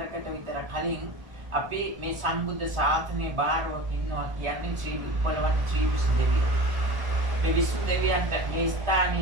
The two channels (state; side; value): late; left; 1.4 ms